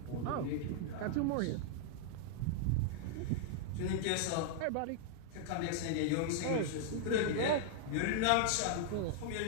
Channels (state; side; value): different; both; correlation -0.01